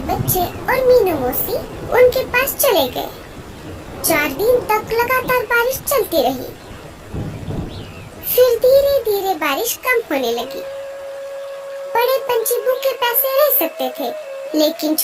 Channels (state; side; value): identical; both; correlation 1.00